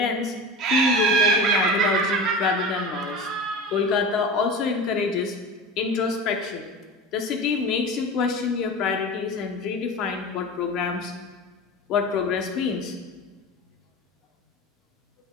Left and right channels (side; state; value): both; normal; correlation 0.30